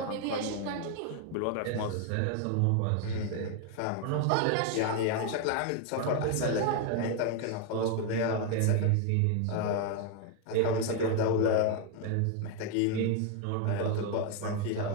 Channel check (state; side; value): different; both; correlation 0.01